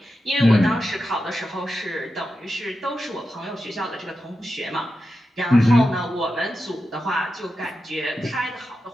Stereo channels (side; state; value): both; normal; correlation 0.90